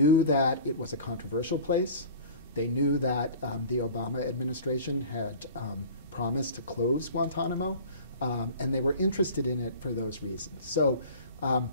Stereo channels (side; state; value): both; inverted; correlation -0.41